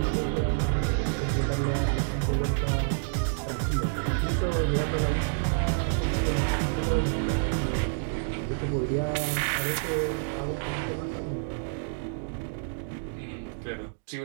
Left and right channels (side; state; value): left; silent; digital silence